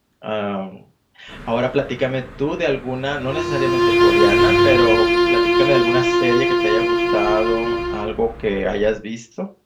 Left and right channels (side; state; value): both; identical; correlation 1.00